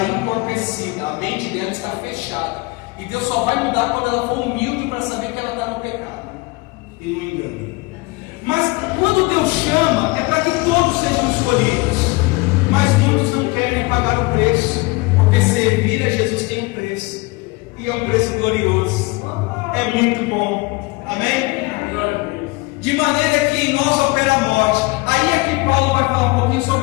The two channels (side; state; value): right; quieter; 24.6 dB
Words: entorpecida. A mente dela está fechada. E Deus só vai mudar quando ela for humilde para saber que ela está no pecado e no engano. Mas quando Deus chama, é para que todos sejam escolhidos. Mas muitos não querem pagar o preço, porque servir a Jesus tem um preço, e é um preço glorioso. É muito bom. Amém? De maneira que em nós opera a morte. Aí aqui Paulo vai falar um pouquinho